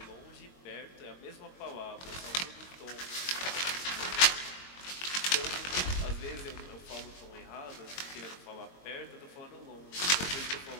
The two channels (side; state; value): right; late; 22 ms